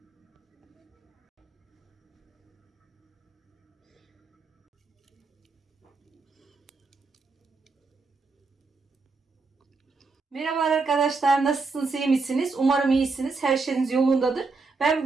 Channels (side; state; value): left; quieter; 4.1 dB